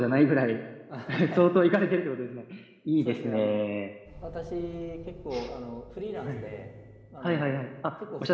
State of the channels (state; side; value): identical; both; correlation 1.00